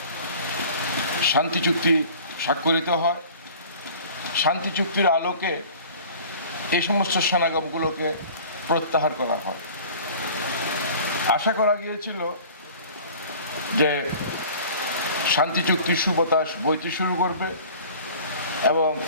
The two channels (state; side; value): inverted; both; correlation -0.45